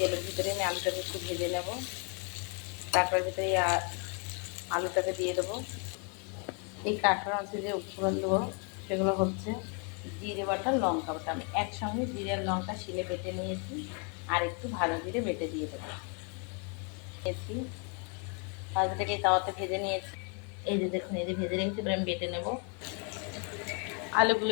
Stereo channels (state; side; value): quieter; right; 37.7 dB